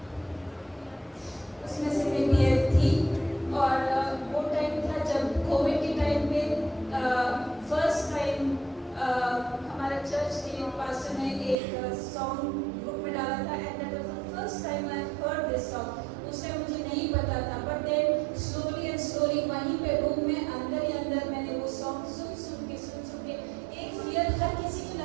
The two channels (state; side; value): drops out; left; at 11.6 s